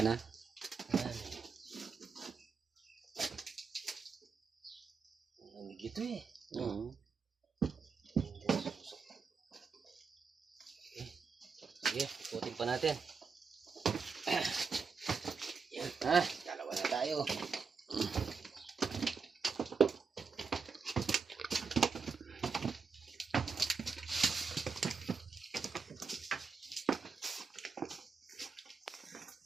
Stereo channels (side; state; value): left; quieter; 5.3 dB